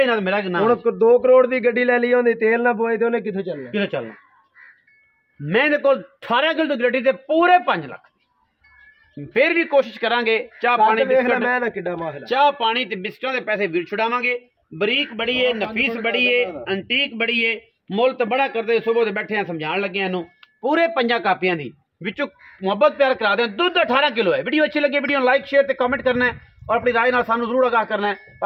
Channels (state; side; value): identical; both; correlation 1.00